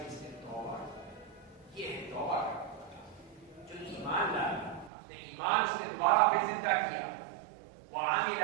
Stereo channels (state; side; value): drops out; left; at 4.9 s